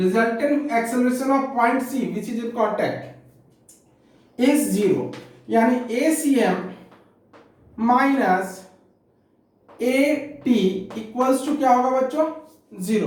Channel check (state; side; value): identical; both; correlation 1.00